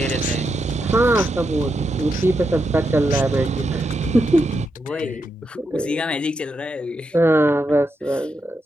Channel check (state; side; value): normal; both; correlation 0.84